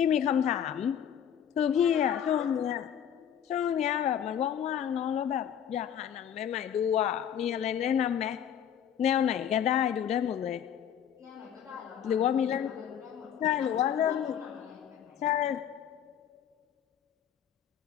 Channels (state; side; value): quieter; right; 9.2 dB